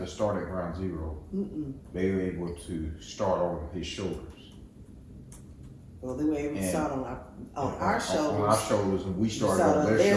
start at ground zero. They were able to start on his shoulders. Well, they were able to And start on our On shoulders. our shoulders, and we started Start on on their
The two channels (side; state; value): both; identical; correlation 1.00